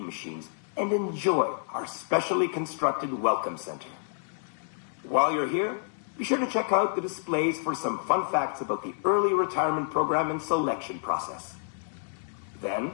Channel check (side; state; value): right; silent; digital silence